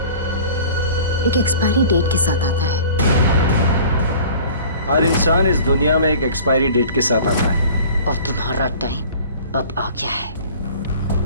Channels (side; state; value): both; inverted; correlation -0.45